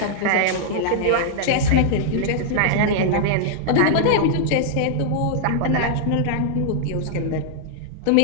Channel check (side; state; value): both; different; correlation -0.01